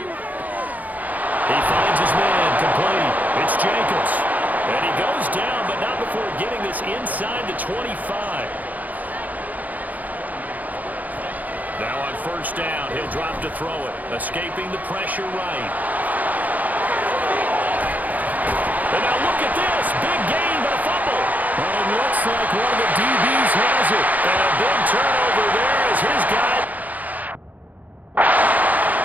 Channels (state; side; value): late; left; 0.079 ms